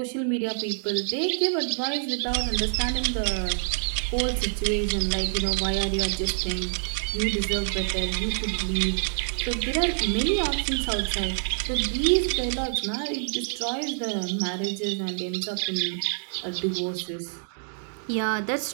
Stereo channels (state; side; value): silent; left; digital silence